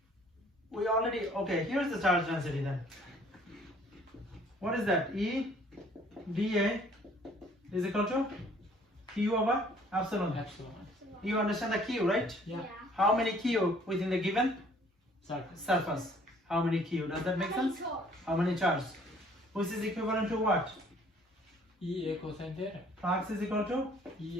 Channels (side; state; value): both; normal; correlation 0.58